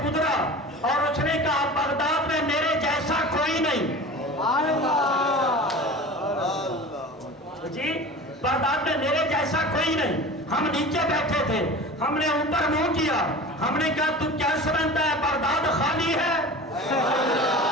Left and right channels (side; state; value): both; normal; correlation 0.36